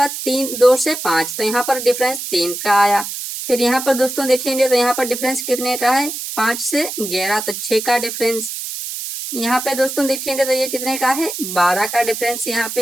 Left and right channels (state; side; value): noise; right; hiss, 7 dB below the sound